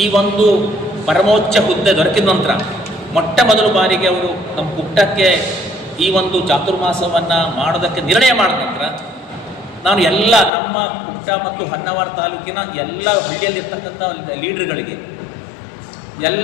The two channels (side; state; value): right; drops out; at 10.5 s